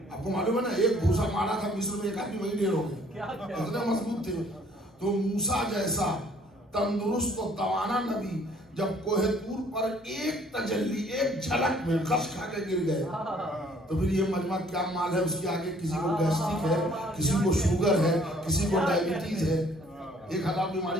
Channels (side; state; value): both; normal; correlation 0.60